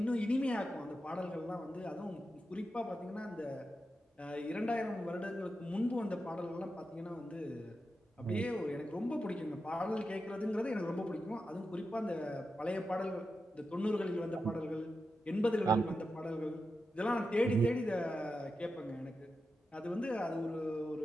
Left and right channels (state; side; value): normal; both; correlation 0.89